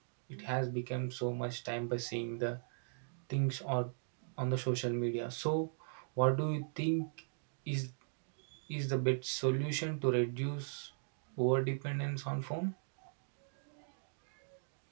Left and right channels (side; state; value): left; silent; digital silence